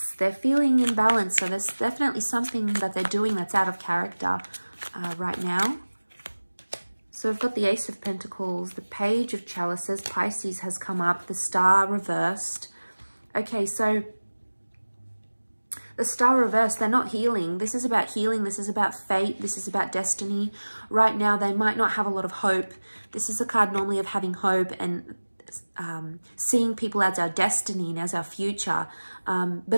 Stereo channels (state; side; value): inverted; both; correlation -1.00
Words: They're feeling imbalanced, so there's definitely something that they're doing that's out of character right now. So we've got the Ace of Pentacles, the Page of Chalices, Pisces has come up, the Star reversed. Okay, so the Star reversed, they're not healing. This is about healing. This is about fate. This is about destiny. Right now, they might not have a lot of hope. This is a card normally of having hope and seeing people as our destiny and as our future.